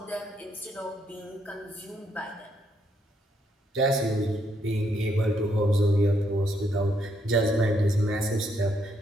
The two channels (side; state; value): both; normal; correlation 0.74